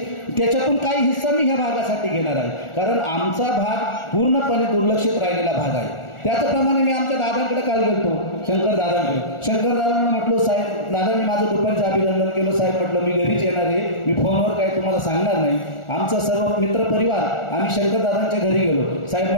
त्याच्यातून काही हिस्सा मी ह्या भागासाठी घेणार आहे, कारण आमचा भाग पूर्णपणे दुर्लक्षित राहिलेला भाग आहे. त्याचप्रमाणे मी आमच्या दादांकडे काल गेलतो, शंकर दादांना म्हटलो, साहेब दादांनी माझं दुपारचं अभिनंदन केलं. साहेब म्हटलं मी घरीच येणार आहे, मी फोनवर काही तुम्हाला सांगणार नाही. आमचा सर्व मित्रपरिवार आम्ही शंकर दादांच्या घरी गेलो. साहेब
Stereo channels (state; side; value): late; right; 1.4 ms